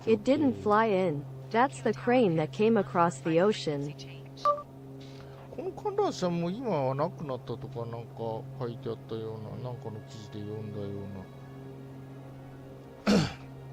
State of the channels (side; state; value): both; identical; correlation 1.00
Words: It didn't fly in. That's the crane that came across the ocean. この観覧車も今はなくなったとかなんか書いてあったような、なんかの記事で読んだような。